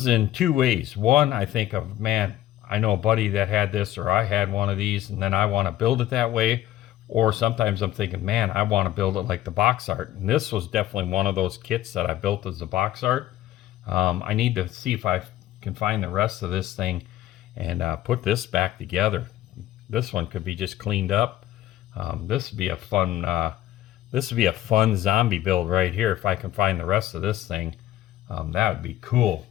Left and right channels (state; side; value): quieter; right; 13.7 dB